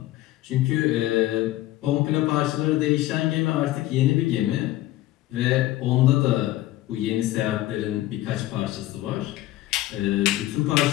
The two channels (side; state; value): right; quieter; 15.8 dB